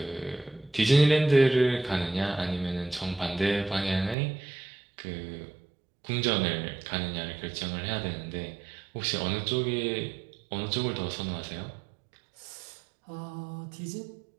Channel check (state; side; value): drops out; left; at 4.2 s